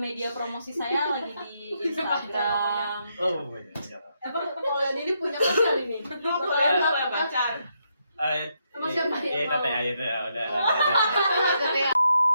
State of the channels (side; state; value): both; inverted; correlation -0.79